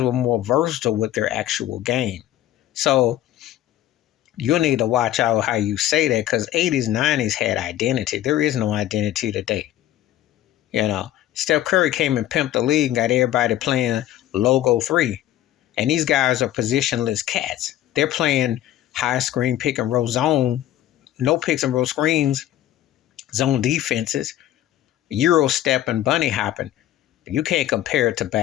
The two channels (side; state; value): right; quieter; 13.1 dB